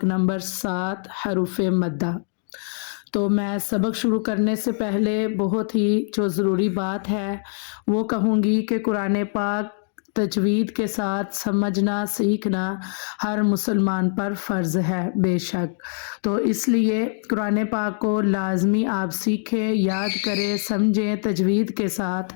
नंबर 7 हरूफ मद्दा। तो मैं सबक शुरू करने से पहले बहुत ही जो ज़रूरी बात है वो कहूँगी कि कुरान पाक तजवीद के साथ समझना सीखना हर मुसलमान पर फ़र्ज़ है बेशक। तो इसलिए कुरान पाक को लाजमी आप सीखें, याद करें, समझें तजवीद के साथ।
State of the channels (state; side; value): silent; right; 62 dB below the other